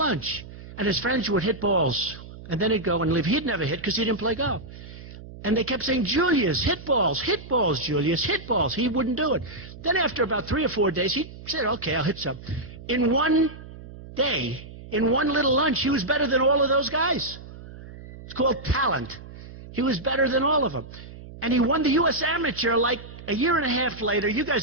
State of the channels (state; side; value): noise; right; hum, 15 dB below the sound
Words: And his friends would hit balls. And then he'd go and leave. He'd never hit because he didn't play golf. And they kept saying, Julius, hit balls, Julius, hit balls. He wouldn't do it. Then after about 3 or 4 days, he said, okay, I'll hit some. In one day, in one little lunch, he was better than all of those guys. It's called talent. He was better than all of them. And he won the U.S. Amateur like a year and a half later. You